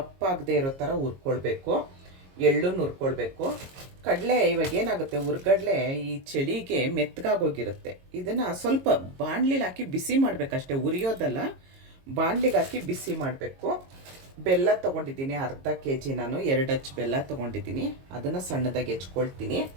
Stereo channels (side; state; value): left; late; 22 ms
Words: ಇರೋ ಥರ ಹುರ್ಕೊಳ್ಬೇಕು. ಎಳ್ಳು ಹುರ್ಕೊಳ್ಬೇಕು. ಕಡಲೆ ಇವಾಗ ಏನಾಗುತ್ತೆ, ಹುರ್ಗಡ್ಲೆ ಈ ಚಳಿಗೆ ಮೆತ್ತಗಾಗೋಗಿರುತ್ತೆ. ಇದನ್ನು ಸ್ವಲ್ಪ ಬಾಣಲಿಲಿ ಹಾಕಿ ಬಿಸಿ ಮಾಡಬೇಕಷ್ಟೇ, ಉರಿಯೋದಲ್ಲ, ಬಾಣಲಿಗೆ ಹಾಕಿ ಬಿಸಿ ಮಾಡಬೇಕು. ಬೆಲ್ಲ ತೊಗೊಂಡಿದ್ದೀನಿ ಅರ್ಧ ಕೆ ಜಿ. ನಾನು 2 ಅಚ್ಚು ಬೆಲ್ಲ ತೊಗೊಂಡಿದ್ದೀನಿ, ಅದನ್ನು ಸಣ್ಣದಾಗಿ ಹೆಚ್ಕೊಳ್ತೀನಿ.